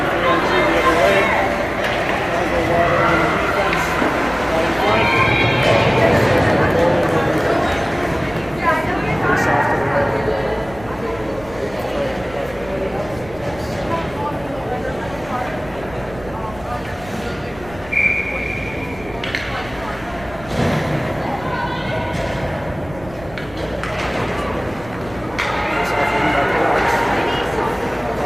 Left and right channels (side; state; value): right; noise; rumble, 18 dB below the sound